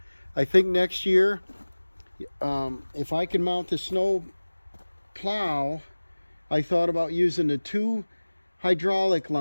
I think next year, if I can mount the snow plow, I thought about using the 2 hydraulic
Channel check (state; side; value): inverted; both; correlation -1.00